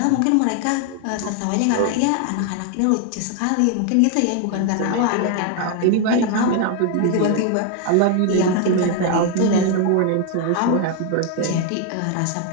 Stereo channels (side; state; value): both; different; correlation 0.00